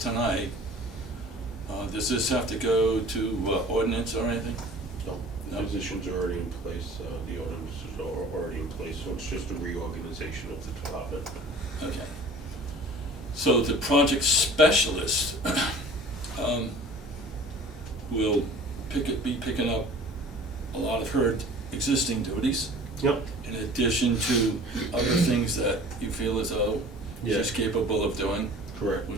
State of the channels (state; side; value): normal; both; correlation 0.45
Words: does this have to go to ordinance or anything? No, No. positions are already in place, the ordinances are already in place, so it's just a reorganization of the department. Okay. So the project specialist will be picking up a lot of her existing duties, Yep. in addition to other things that you feel as though she's Yes. capable of doing, Correct.